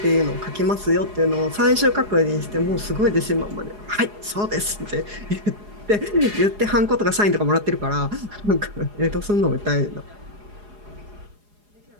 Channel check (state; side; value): late; left; 4.8 ms